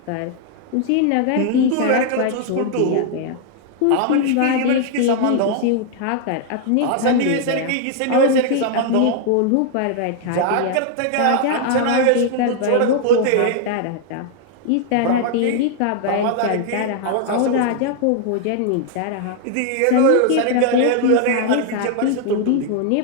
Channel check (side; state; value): both; different; correlation 0.00